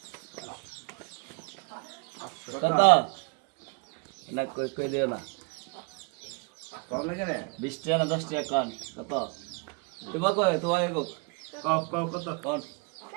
কত না কই দিও না 20 টাকা না 10 টাকা কোন কত তোমার কই তোমার কো কত কোন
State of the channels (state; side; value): quieter; left; 31.5 dB